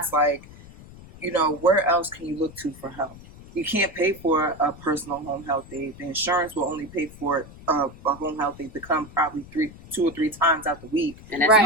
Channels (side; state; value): left; noise; rumble, 19 dB below the sound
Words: like, where else can you look to for help? You can't pay for a personal home health aid. The insurance will only pay for a home health aid to come probably 2 or 3 times out the week. And that's Right.